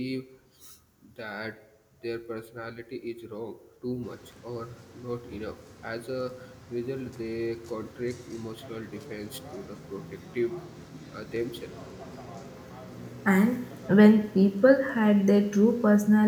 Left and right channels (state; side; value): identical; both; correlation 1.00